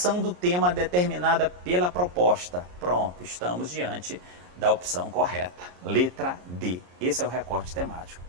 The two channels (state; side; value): late; left; 34 ms